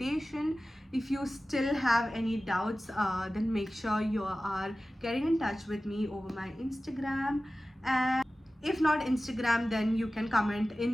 If you still have any doubts, then make sure you are getting in touch with me over my Instagram. And if not Instagram, then you can comment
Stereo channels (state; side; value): normal; both; correlation 0.96